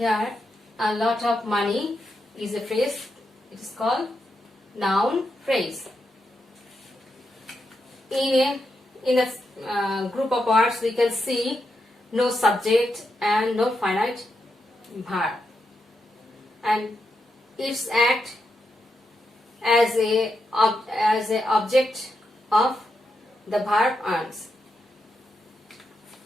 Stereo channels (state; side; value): normal; both; correlation 0.84